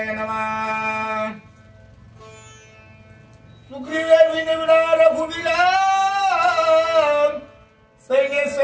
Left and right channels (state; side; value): identical; both; correlation 1.00